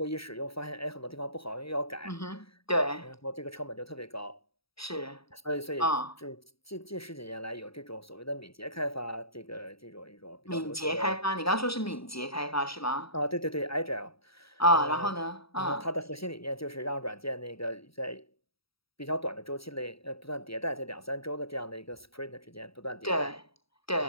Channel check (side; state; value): right; late; 0.76 ms